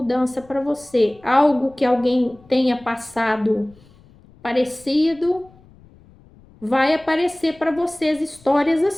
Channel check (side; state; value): left; noise; rumble, 26 dB below the sound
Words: para você. Algo que alguém tenha passado parecido, vai aparecer para vocês histórias